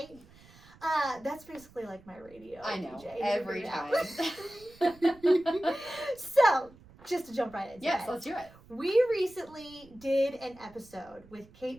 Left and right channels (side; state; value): right; noise; rumble, 24 dB below the sound